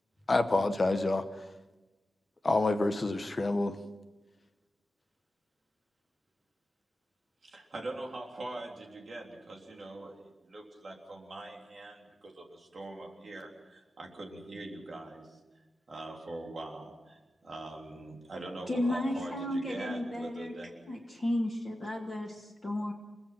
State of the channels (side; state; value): both; normal; correlation 0.93